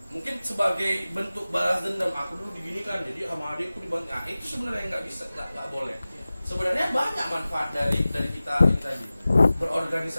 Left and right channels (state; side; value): inverted; both; correlation -0.97